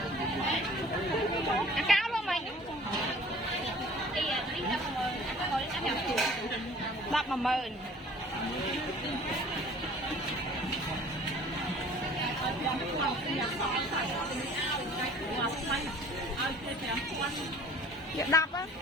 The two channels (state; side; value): normal; both; correlation 0.49